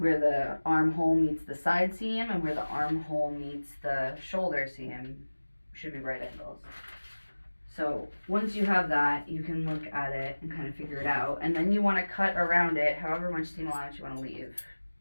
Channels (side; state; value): both; inverted; correlation -1.00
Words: the armhole meets the side seam and where the armhole meets the shoulder seam should be right angles. So once you have that, you can look at it and kind of figure it out. And then you want to cut around it however much seam allowance you want to leave.